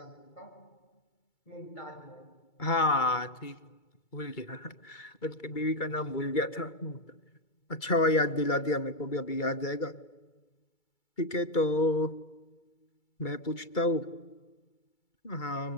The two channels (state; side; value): late; right; 2.3 ms